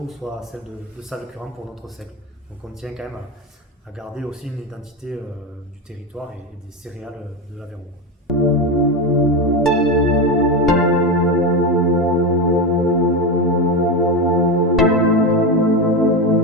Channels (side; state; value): both; normal; correlation 0.15